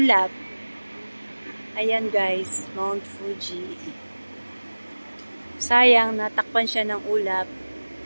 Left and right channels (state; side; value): inverted; both; correlation -1.00